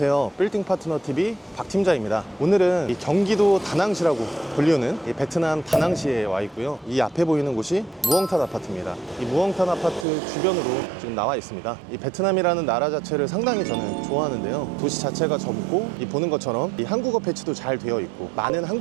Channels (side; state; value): left; drops out; at 10.1 s